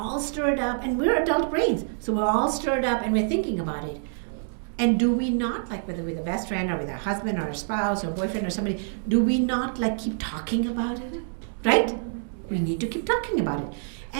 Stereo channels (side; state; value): left; silent; digital silence